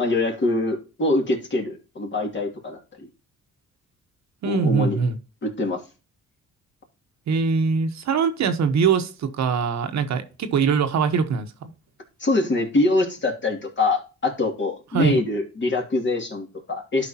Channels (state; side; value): normal; both; correlation 0.42